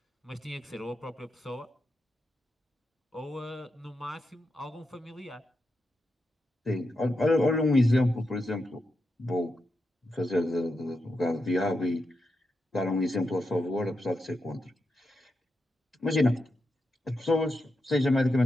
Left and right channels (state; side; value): normal; both; correlation 0.86